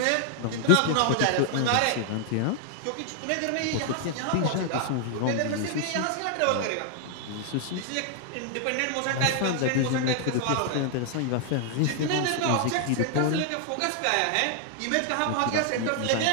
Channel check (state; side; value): different; both; correlation 0.00